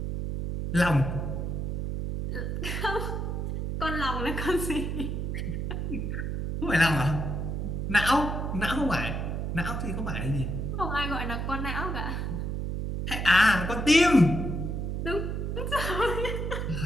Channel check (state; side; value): noise; right; hum, 2 dB below the sound